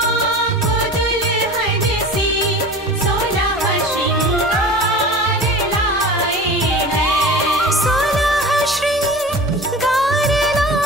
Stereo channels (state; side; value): normal; both; correlation 0.37